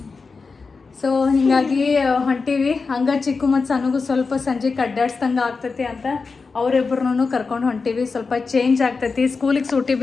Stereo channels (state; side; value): quieter; right; 4.5 dB